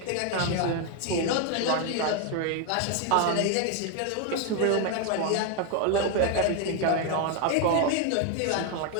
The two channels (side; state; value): both; different; correlation 0.01